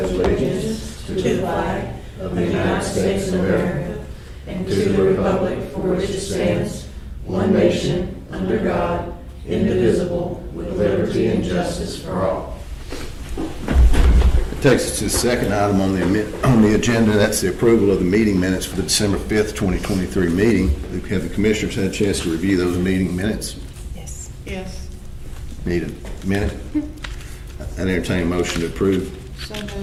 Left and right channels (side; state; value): both; identical; correlation 1.00